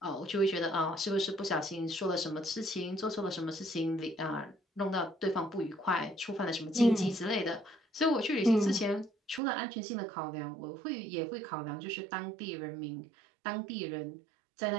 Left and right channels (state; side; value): drops out; left; at 9.4 s